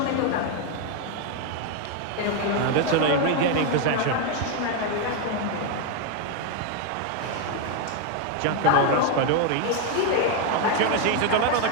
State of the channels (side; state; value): both; different; correlation 0.01